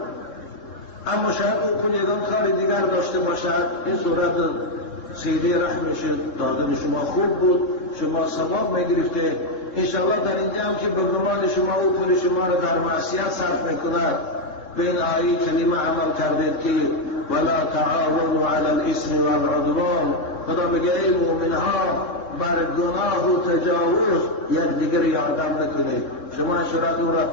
اما شاید اون پول یکم کار دیگر داشته باشد، این صورت سیده رحمش دادن شما خوب بود، شما ثواب میگرفته. انشاءالله در اینجا هم که به گمان شما او پول شما را در معصیت صرف میکند، به این آیه کلمه عمل کردید که ولا تعاونوا علی الاثم والعدوان. خدا میگه ای مومنها بر گناه و تجاوز یکدیگر یادم نکنید. شما شرط او را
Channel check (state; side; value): late; right; 3.7 ms